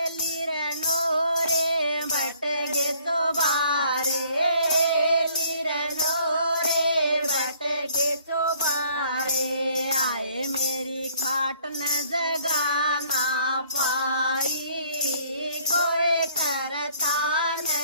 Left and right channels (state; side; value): inverted; both; correlation -0.60